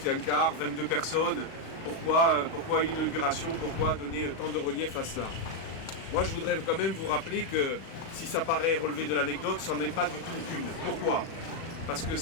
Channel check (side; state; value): right; late; 36 ms